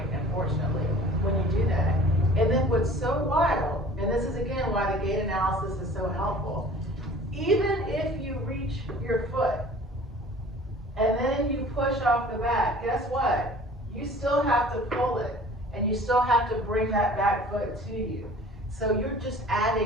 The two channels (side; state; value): both; normal; correlation 0.47